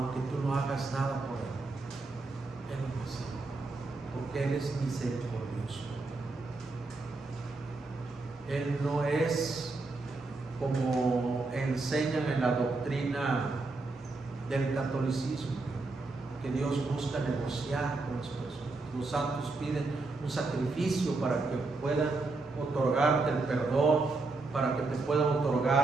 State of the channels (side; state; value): left; quieter; 3.5 dB